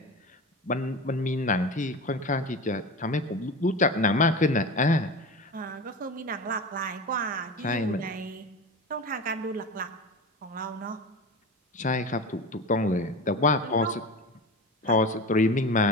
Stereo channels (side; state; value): both; normal; correlation 0.28